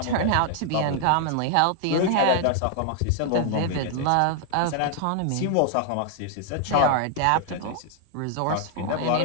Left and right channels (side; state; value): both; different; correlation 0.00